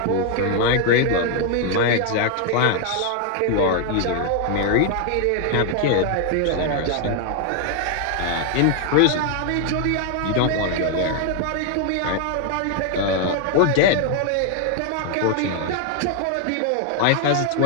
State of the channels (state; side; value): different; both; correlation 0.00